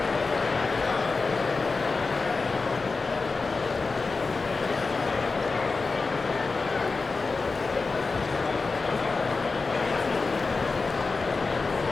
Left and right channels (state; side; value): quieter; right; 4.1 dB